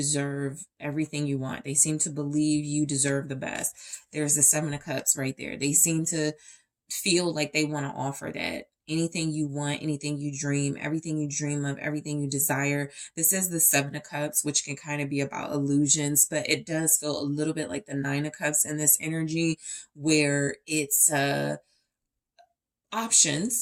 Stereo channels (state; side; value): identical; both; correlation 1.00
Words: everything you want. They seem to believe you deserve the best. There's the Seven of Cups right there. They seem to feel like they want to offer that. Anything you want, anything you dream, everything you dream of, everything you desire. This is the Seven of Cups, which can kind of be about illusions, but it does feel a little bit like the Nine of Cups in this energy, where it's